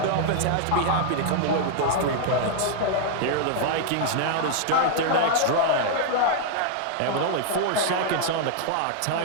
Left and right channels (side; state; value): both; different; correlation 0.00